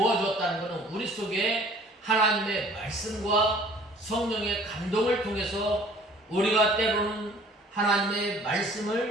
것은 우리 속에 하나님의 말씀과 성령의 감동을 통해서 우리가 때로는 하나님의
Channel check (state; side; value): normal; both; correlation 0.53